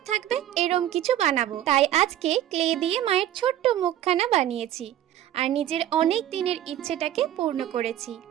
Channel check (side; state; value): left; quieter; 12.2 dB